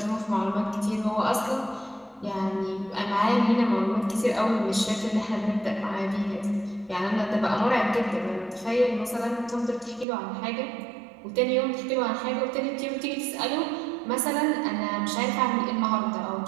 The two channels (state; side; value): drops out; left; at 10.1 s